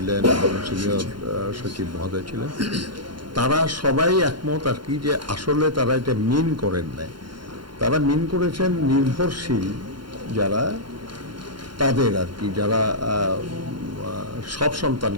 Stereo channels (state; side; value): late; left; 0.72 ms